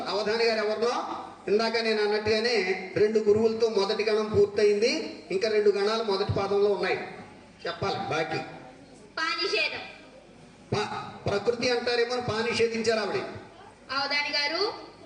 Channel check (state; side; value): identical; both; correlation 1.00